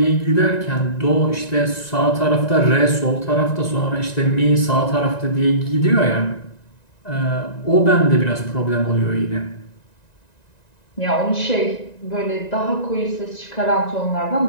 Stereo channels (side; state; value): right; late; 1.9 ms